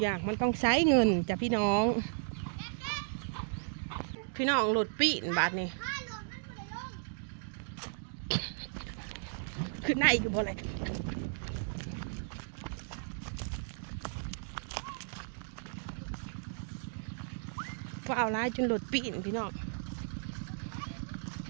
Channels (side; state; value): left; silent; digital silence